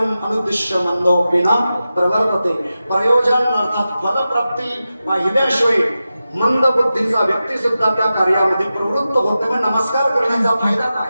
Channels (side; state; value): both; inverted; correlation -0.93